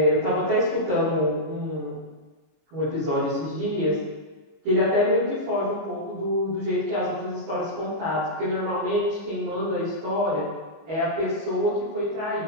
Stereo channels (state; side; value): late; left; 25 ms